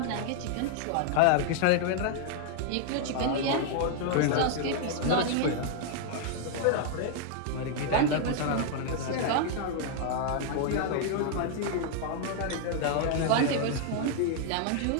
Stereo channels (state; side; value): different; both; correlation 0.00